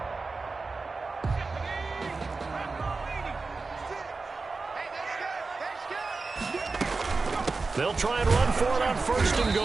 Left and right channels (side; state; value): left; quieter; 4.0 dB